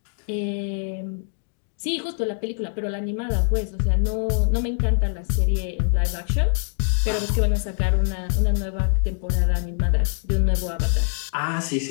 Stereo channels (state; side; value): silent; right; 63 dB below the other